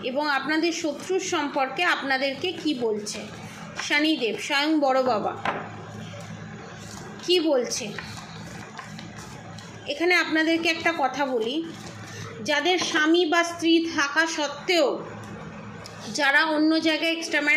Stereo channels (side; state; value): both; identical; correlation 1.00